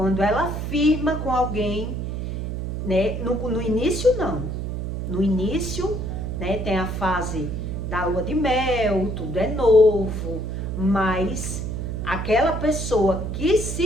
ela firma com alguém, né, no início não. No início, né, tem a fase da lua de mel, tudo é novo, mas aquela pessoa que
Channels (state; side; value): noise; right; hum, 4 dB below the sound